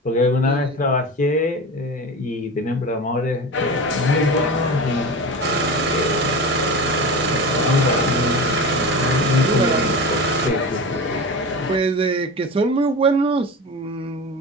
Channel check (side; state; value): both; normal; correlation 0.28